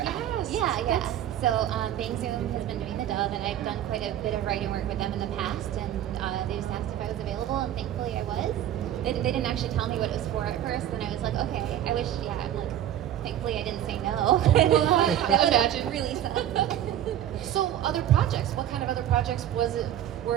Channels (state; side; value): quieter; left; 11.4 dB